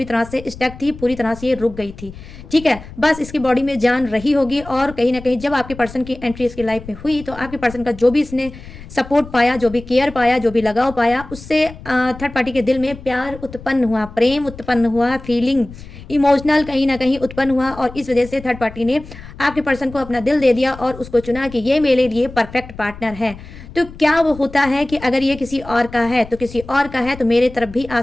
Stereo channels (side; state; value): left; noise; rumble, 16 dB below the sound